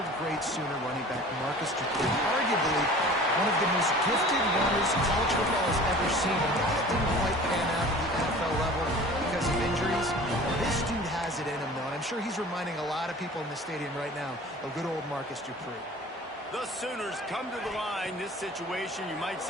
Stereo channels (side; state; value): both; normal; correlation 0.43